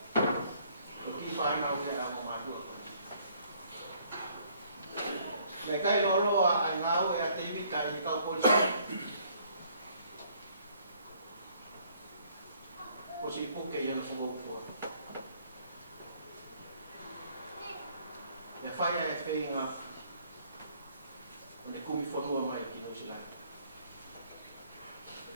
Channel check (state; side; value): inverted; both; correlation -0.62